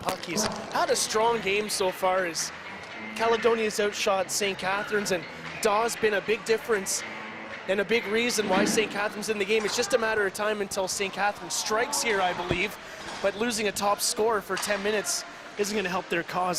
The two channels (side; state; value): both; identical; correlation 1.00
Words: puck. He's had a strong game so far as Caledonia's outshot St. Catharines, and Daw's been a big difference and a big reason why St. Catharines in the game. It's just a matter of time until St. Catharines strikes here, I believe, but losing a top scorer for 10 minutes isn't going to help their cause,